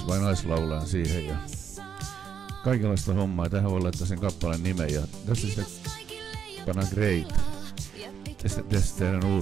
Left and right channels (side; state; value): left; quieter; 7.7 dB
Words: vai naislaulajan siihen ja kaikenlaista hommaa ja tähän voi laittaa sen kappaleen nimen ja tässä sitten pannaan Great. Tästä tehdään